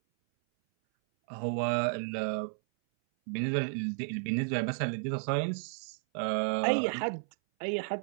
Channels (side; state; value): left; silent; 56 dB below the other